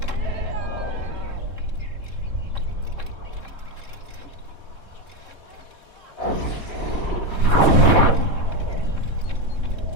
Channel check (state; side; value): late; right; 3.7 ms